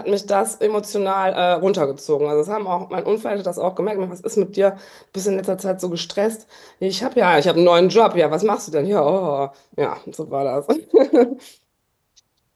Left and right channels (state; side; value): identical; both; correlation 1.00